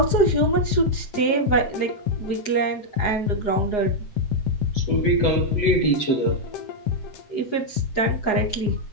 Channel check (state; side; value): late; right; 7.6 ms